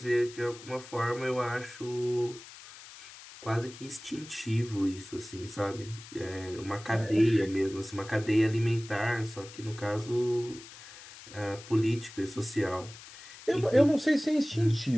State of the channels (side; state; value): left; noise; hiss, 17 dB below the sound